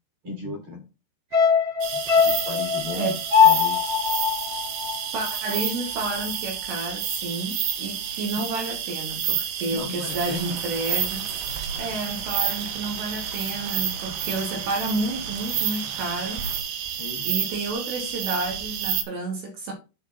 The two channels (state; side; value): late; left; 13 ms